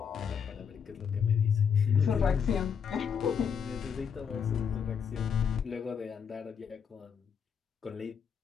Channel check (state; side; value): quieter; right; 7.1 dB